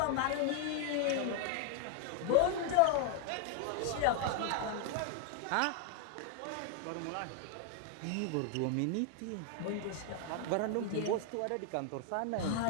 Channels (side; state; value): both; different; correlation 0.00